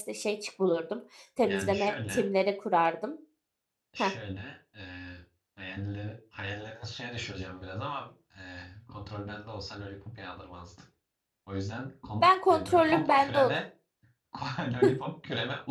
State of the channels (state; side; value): identical; both; correlation 1.00